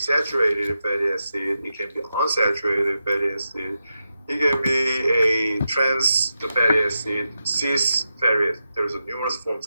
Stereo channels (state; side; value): inverted; both; correlation -0.88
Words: fatty acid, it can be unsaturated fatty acid, it can be a trans fatty acid, cis fatty acid. There's numerous forms